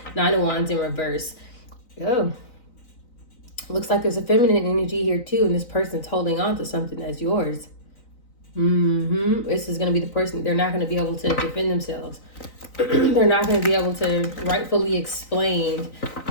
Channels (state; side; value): late; right; 3.9 ms